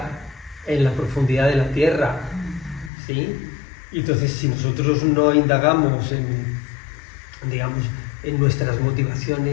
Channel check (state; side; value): drops out; right; at 2.9 s